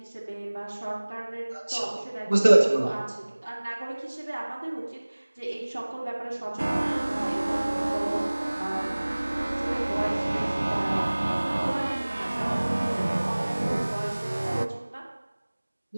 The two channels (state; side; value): inverted; both; correlation -1.00